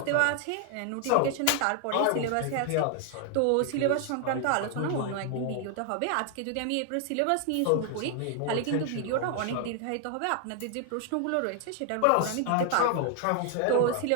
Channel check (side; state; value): both; different; correlation 0.00